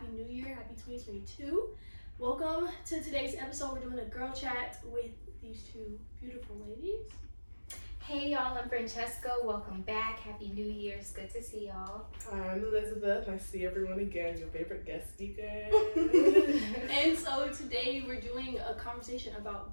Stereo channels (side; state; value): both; inverted; correlation -1.00